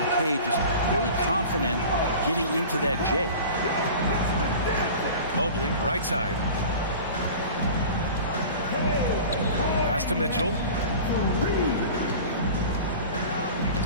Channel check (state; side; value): inverted; both; correlation -0.38